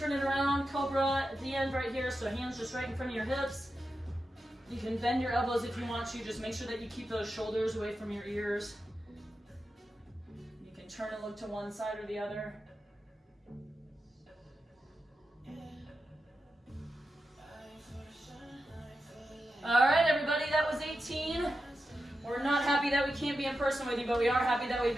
it around, Cobra at the end right here, so hands just right in front of your hips. You can bend your elbows if you want to, just make sure that you keep those shoulders away from your ears. You can turn and look to one side or the other. All right, everybody, that was 18. We're not happy that we can't be in person with you, but we are happy that we've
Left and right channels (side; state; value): both; normal; correlation 0.90